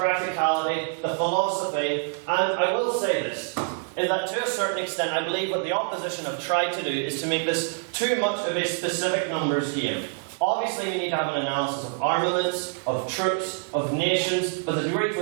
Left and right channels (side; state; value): left; silent; digital silence